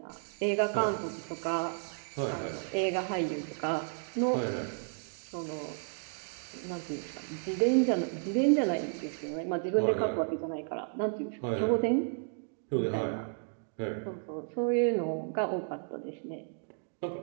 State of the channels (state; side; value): silent; left; 56 dB below the other